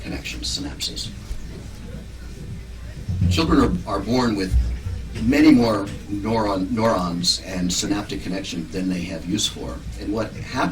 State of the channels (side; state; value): both; identical; correlation 1.00